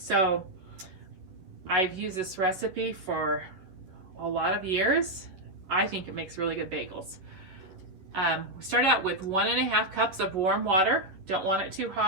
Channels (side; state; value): left; late; 11 ms